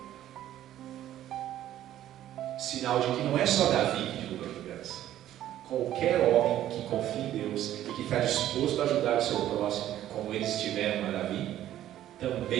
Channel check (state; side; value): quieter; left; 12.5 dB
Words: Sinal de que não é só Davi que derruba gigantes. Qualquer homem que confia em Deus e que está disposto a ajudar o seu próximo, como eles tiveram a Davi,